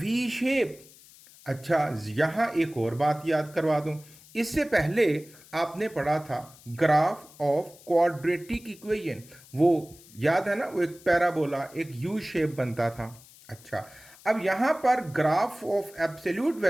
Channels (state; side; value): noise; left; hiss, 23 dB below the sound